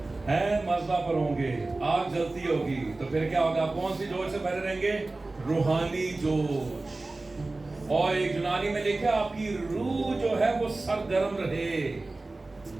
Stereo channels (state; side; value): quieter; left; 3.2 dB